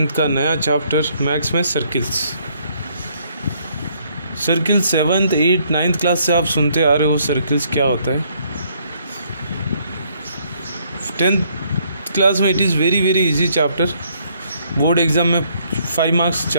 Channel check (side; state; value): both; inverted; correlation -0.67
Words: का नया चैप्टर मैथ्स में circles. Circle 7th 8th 9th class से आप सुनते आ रहे हो सर्किल्स क्या होता है। 10th क्लास में it is very easy chapter. Board exam में 5 मार्क्स